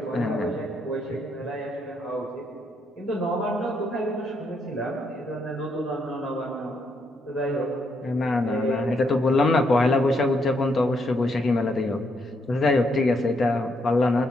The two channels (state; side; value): normal; both; correlation 0.76